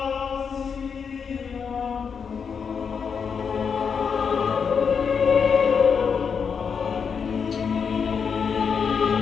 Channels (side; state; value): right; quieter; 6.3 dB